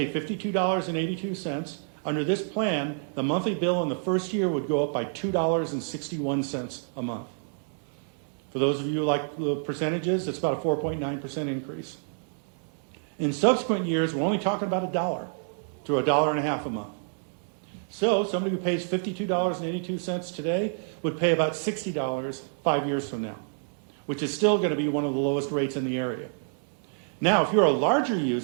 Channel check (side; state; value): left; silent; digital silence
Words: $52.82. Under this plan, the monthly bill in the first year would go up by $2.61 a month. For those of you who like the percentages, it's about a 4.9% increase. In subsequent years, we're only talking about $1 to $1.50 a month. So somebody who pays $52.82 today would pay about $60 5 years from now, which is still going to be one of the lowest rates in the area. Now, if you're a larger